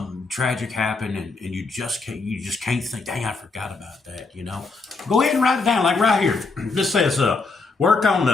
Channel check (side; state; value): right; quieter; 4.0 dB